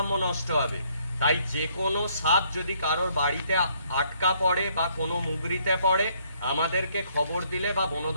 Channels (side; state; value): both; inverted; correlation -0.67